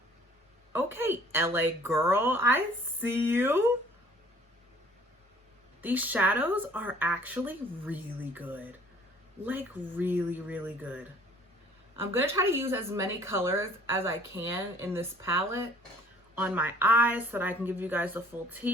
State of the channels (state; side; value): normal; both; correlation 0.54